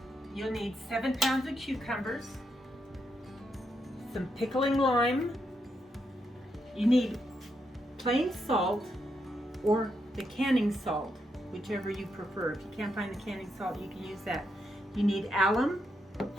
you'll need 7 pounds of cucumbers, some pickling lime. You need plain salt or the canning salt, whichever you prefer. If you can't find the canning salt, you can use that. You need alum.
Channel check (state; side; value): normal; both; correlation 0.81